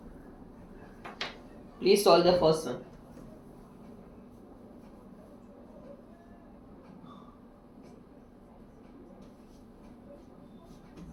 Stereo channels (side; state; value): both; identical; correlation 1.00